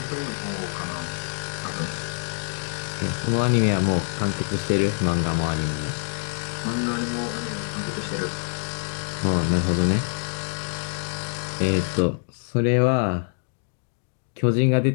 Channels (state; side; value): silent; right; 61 dB below the other